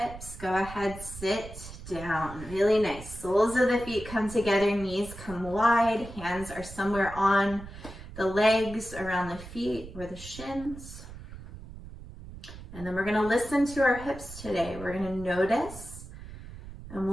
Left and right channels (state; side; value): noise; right; rumble, 14 dB below the sound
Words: Go ahead, sit down. Really nice. Soles of the feet come together, knees come wide, hands are somewhere on the legs, around the feet or the shins. And then we're going to listen to our hips today. We're going to notice, and